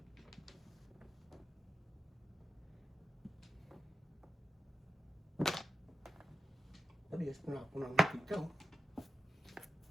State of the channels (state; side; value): normal; both; correlation 0.89